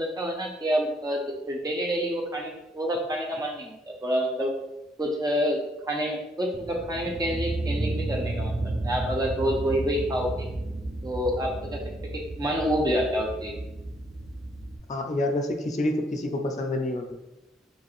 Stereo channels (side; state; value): both; normal; correlation 0.69